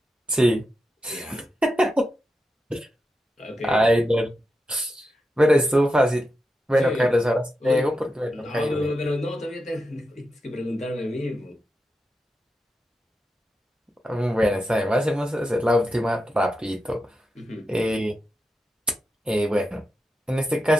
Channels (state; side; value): normal; both; correlation 0.88